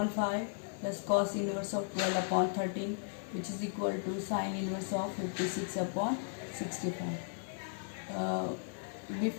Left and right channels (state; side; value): silent; right; digital silence